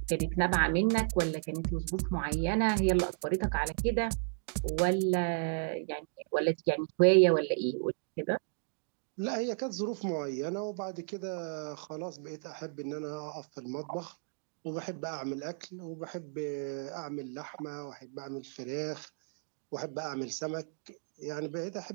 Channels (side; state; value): left; silent; 55 dB below the other